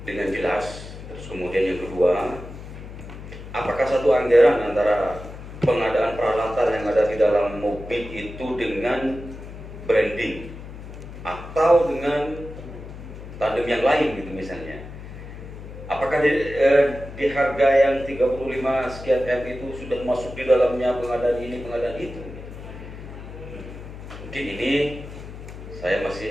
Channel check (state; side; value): noise; left; hum, 13 dB below the sound